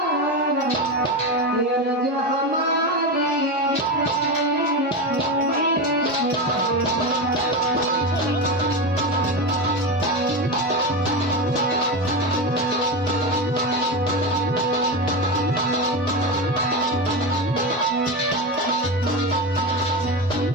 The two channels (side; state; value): both; normal; correlation 0.18